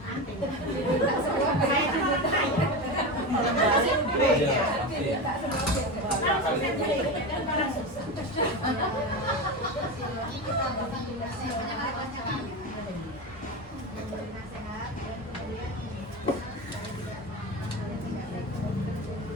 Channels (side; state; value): both; normal; correlation 0.21